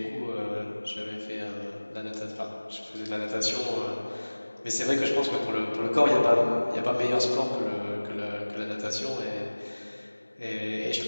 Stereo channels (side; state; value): both; inverted; correlation -1.00